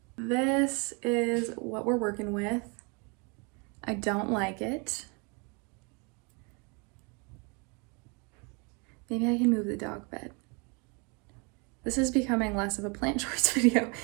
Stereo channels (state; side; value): quieter; left; 32.6 dB